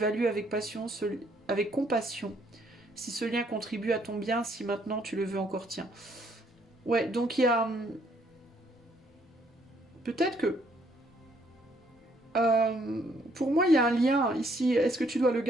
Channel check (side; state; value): both; normal; correlation 0.68